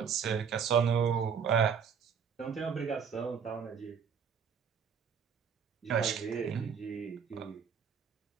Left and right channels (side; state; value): left; quieter; 6.9 dB